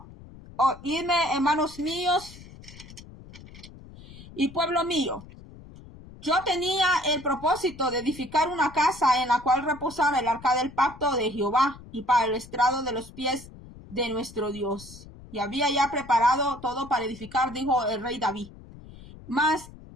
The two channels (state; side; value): noise; left; rumble, 18 dB below the sound